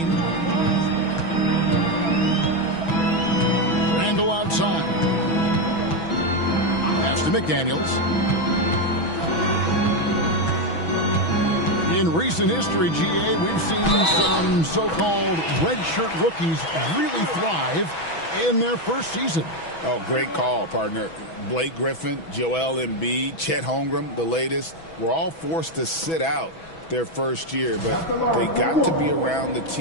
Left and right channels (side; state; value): right; late; 6.1 ms